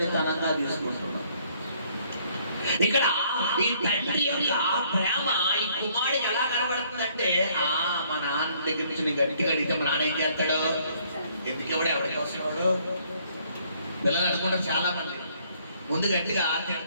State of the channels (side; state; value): both; inverted; correlation -0.64